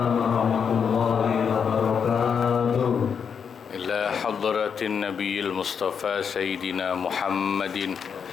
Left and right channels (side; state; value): right; quieter; 6.8 dB